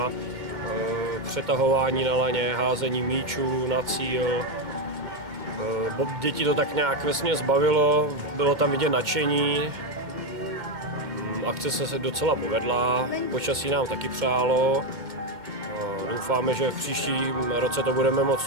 přetahování na laně, házení míčů na cíl. Děti to tak nějak vesměs bavilo, bylo tam vidět nadšení. Akce se docela povedla, počasí nám taky přálo. Doufáme, že v příštím roce to budeme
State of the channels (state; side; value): late; left; 2.2 ms